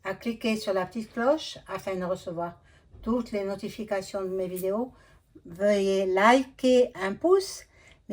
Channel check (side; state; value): both; identical; correlation 1.00